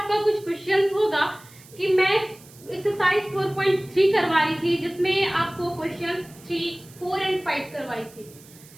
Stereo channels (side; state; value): right; noise; hiss, 23 dB below the sound